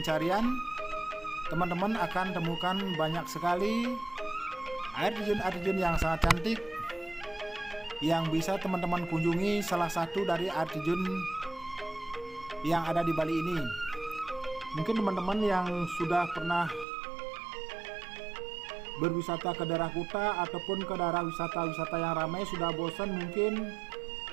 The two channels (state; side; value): drops out; left; at 16.9 s